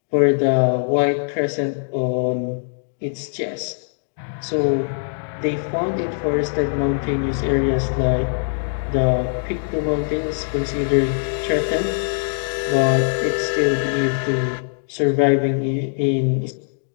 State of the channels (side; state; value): right; silent; digital silence